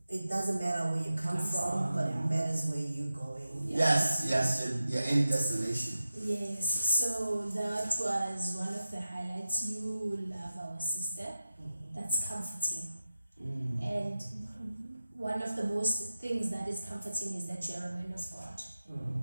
it doesn't matter where you come from, but it matters where you're going. Yes, your end destination. Yes, so that was one of the highlights. You love our sister. That's comforting. And one of the most things that is comforting is that you're a man of God.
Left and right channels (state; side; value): inverted; both; correlation -0.92